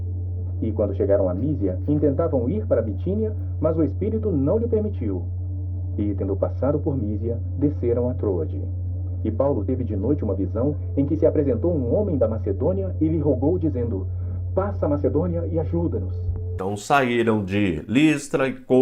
E quando chegaram a Mísia, intentavam ir para Bitínia, mas o Espírito não lhe permitiu. E tendo passado por Mísia, desceram a Troade. E Paulo teve de noite uma visão em que se apresentou um homem da Macedônia e lhe rogou, dizendo: passa a Macedônia e ajuda-nos. Então saíram de Listra,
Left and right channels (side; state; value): both; identical; correlation 1.00